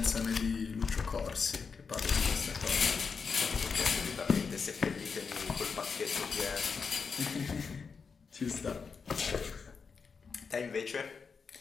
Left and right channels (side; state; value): right; quieter; 5.4 dB